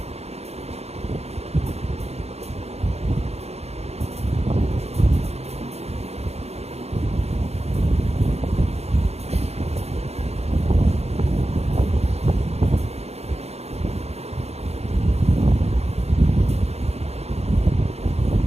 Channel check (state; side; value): late; left; 0.31 ms